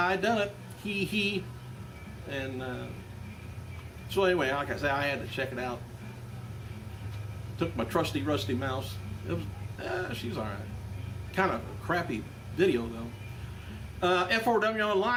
done it. Hee hee." And so anyway, like I say, I had to check it out. Took my trusty rusty mouse. It was, she's all right. Kind of a crappy video though. F4W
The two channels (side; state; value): both; identical; correlation 1.00